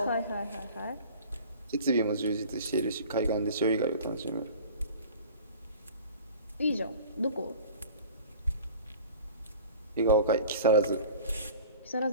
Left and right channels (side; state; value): both; inverted; correlation -0.43